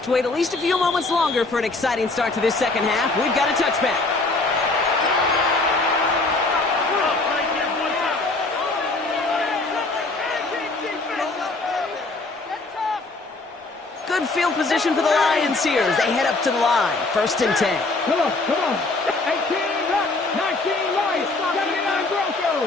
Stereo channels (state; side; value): quieter; right; 3.3 dB